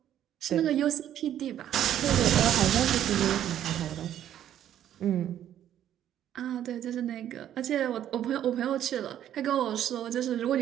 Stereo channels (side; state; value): left; quieter; 11.0 dB